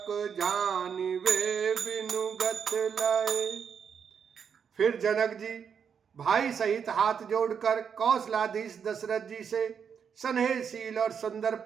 जानिवे बिनुगत लय। फिर जनक जी भाई सहित हाथ जोड़कर कौशलाधीश दशरथ जी से स्नेहशील और सुंदर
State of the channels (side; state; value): left; quieter; 7.1 dB